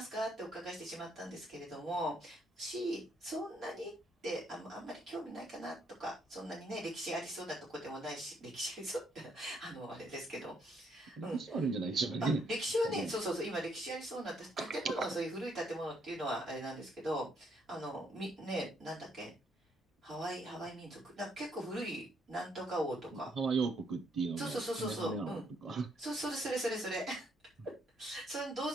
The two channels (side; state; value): both; normal; correlation 0.71